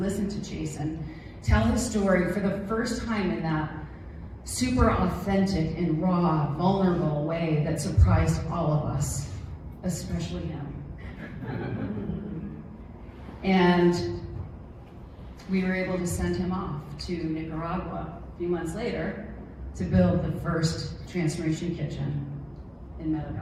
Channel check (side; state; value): both; identical; correlation 1.00